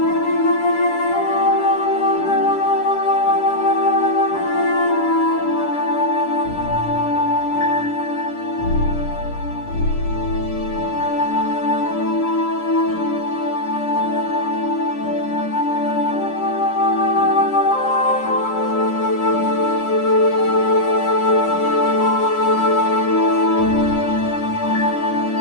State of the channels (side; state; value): right; late; 9.9 ms